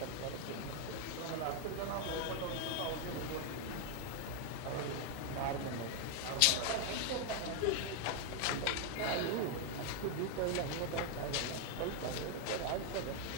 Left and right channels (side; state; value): both; different; correlation 0.00